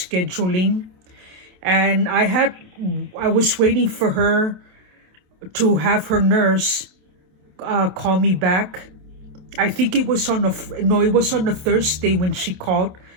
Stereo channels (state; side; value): late; left; 27 ms